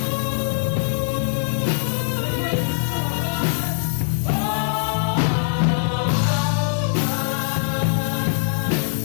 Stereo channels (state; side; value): silent; right; 64 dB below the other